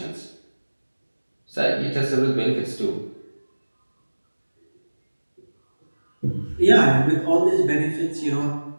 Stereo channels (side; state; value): both; inverted; correlation -1.00